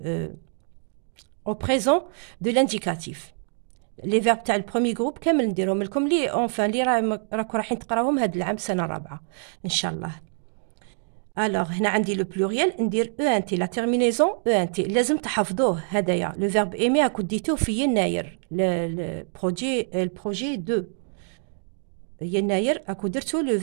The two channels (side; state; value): left; silent; 62 dB below the other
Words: او بريزون دو لانديكاتيف. لي فيرب تاع البروميير جروب كامل نديرهم لكم لي اونفان لي راكم رايحين تقراوهم هاد العام سنه رابعه ان شاء الله. الوغ هنا عندي لو بلوريال ندير او ان تي لا تيرمينيزون او ان تي، لازم تحفظوه هدايا. لو فيرب ايمي راكو ديتوه في يناير البروجي 2 يناير راكو درتو لو